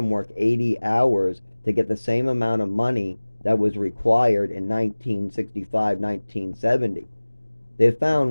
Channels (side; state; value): both; inverted; correlation -1.00